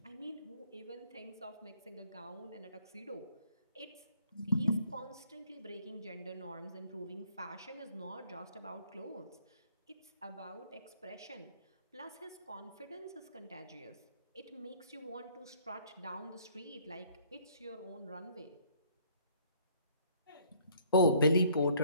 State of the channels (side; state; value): both; inverted; correlation -0.59